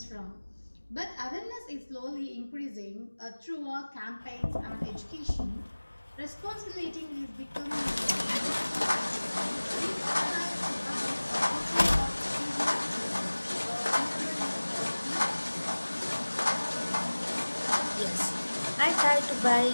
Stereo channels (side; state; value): both; inverted; correlation -1.00